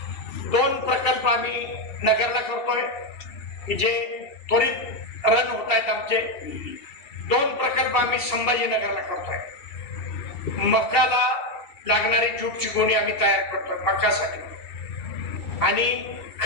2 प्रकल्प आम्ही नगरला करतोय की जे त्वरित रन होत आहेत. आमचे 2 प्रकल्प आम्ही संभाजीनगरला करतोय. मकाला लागणारी ज्यूटची गोणी आम्ही तयार करतोय मकासाठी, आणि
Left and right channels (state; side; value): late; right; 2.7 ms